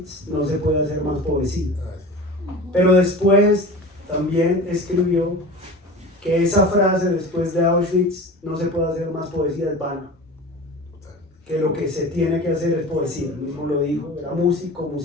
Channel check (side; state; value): both; normal; correlation 0.35